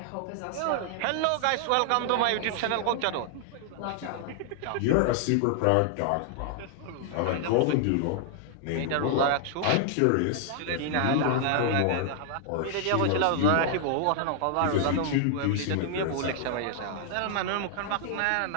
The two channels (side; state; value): both; different; correlation -0.01